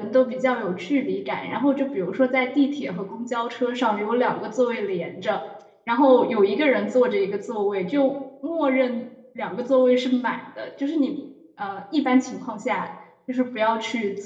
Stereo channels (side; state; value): both; identical; correlation 1.00